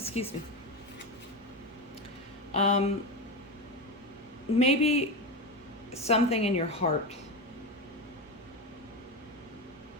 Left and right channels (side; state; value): both; normal; correlation 0.17